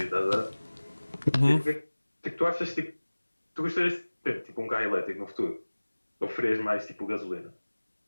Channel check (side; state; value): both; inverted; correlation -1.00